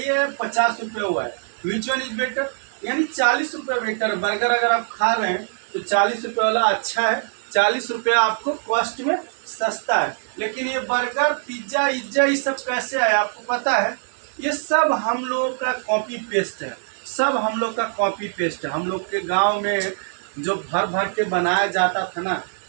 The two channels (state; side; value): silent; left; digital silence